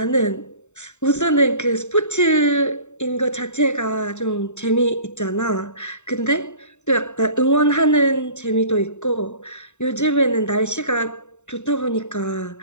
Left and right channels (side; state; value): right; late; 0.84 ms